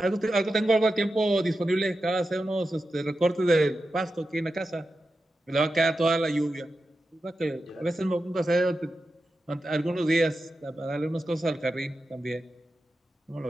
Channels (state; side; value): normal; both; correlation 0.90